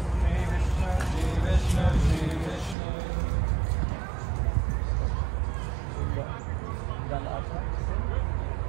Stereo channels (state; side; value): drops out; left; at 2.8 s